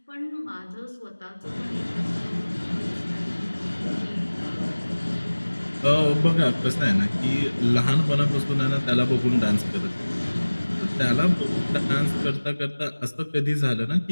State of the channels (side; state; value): both; inverted; correlation -1.00